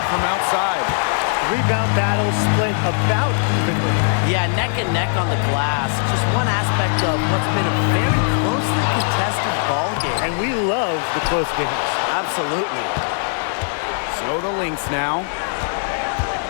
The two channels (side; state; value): right; silent; 62 dB below the other